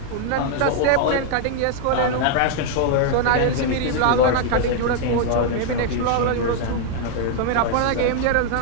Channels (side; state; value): both; different; correlation 0.00